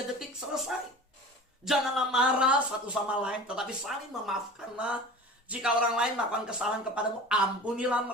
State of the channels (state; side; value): normal; both; correlation 0.37